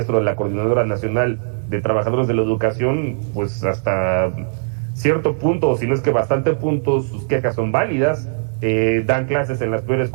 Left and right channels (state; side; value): silent; left; 63 dB below the other